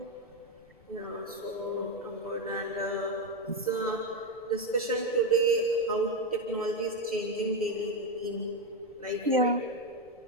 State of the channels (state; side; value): noise; left; rumble, 29 dB below the sound